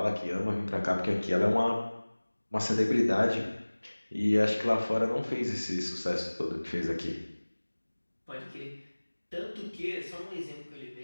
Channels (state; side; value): inverted; both; correlation -1.00